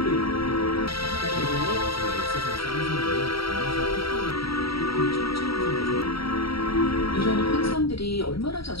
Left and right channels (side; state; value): right; late; 0.75 ms